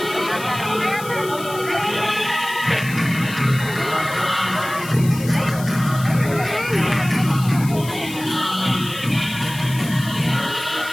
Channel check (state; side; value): noise; left; hiss, 14 dB below the sound